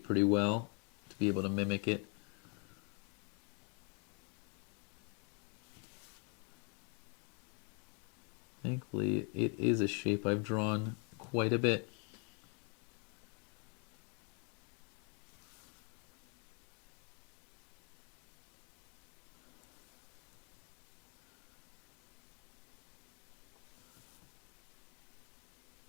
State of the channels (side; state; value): right; quieter; 37.3 dB